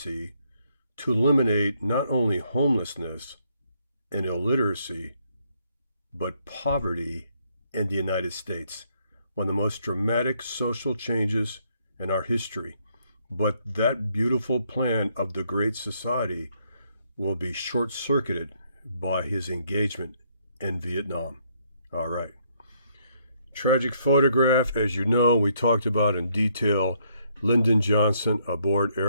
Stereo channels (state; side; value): inverted; both; correlation -0.70